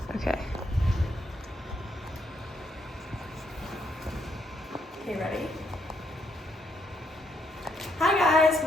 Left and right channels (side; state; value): both; normal; correlation 0.75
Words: Okay. Okay, ready? Hi guys,